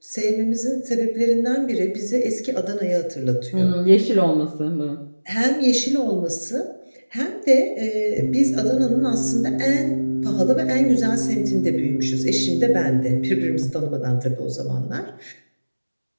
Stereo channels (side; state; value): both; inverted; correlation -1.00